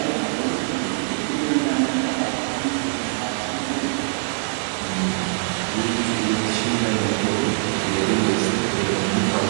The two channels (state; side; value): silent; left; 64 dB below the other